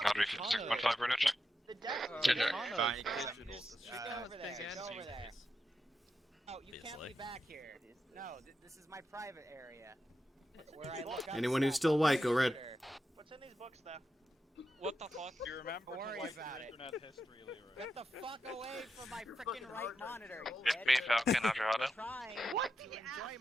Audrey you. 56.5 radio check. The death Check. Fine, Just go over there. Go over there. Oh, you can't be back here. No, this is my private area. Where I look up Anyone who's stuff still on white, my go red. computer. What's in these books, though? What the fuck? You remember Don't worry to like about your it. internet history, Leroy. Get the fuck away from my freaking right monitor. you It's me, bitch. Falcon, how's your I'm auto? trying What to the enjoy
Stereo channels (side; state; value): both; normal; correlation 0.87